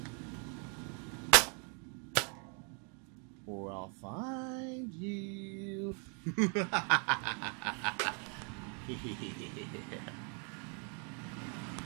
or I'll find you.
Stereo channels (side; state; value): left; quieter; 38.8 dB